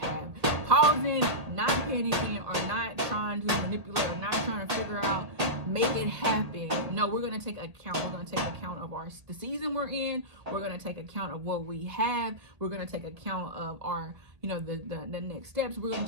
pausing, not panicking, or not trying to manipulate, or not trying to figure out, make it happen. No, we're going to take account. We're going to take account of the season we're in. We're going to take account of what we have. We're going to take account of our, the next steps. We're going to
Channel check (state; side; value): late; left; 1.8 ms